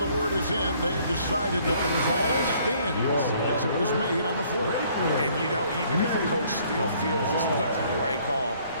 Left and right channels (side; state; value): both; inverted; correlation -0.61